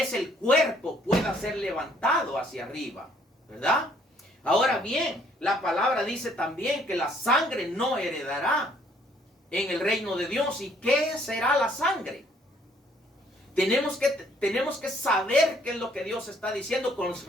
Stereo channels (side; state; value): both; normal; correlation 0.64